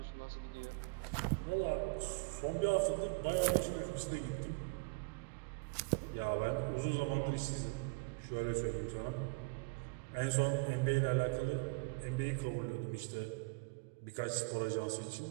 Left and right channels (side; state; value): left; quieter; 30.9 dB